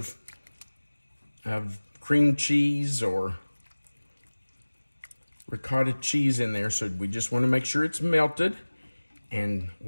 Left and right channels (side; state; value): both; inverted; correlation -1.00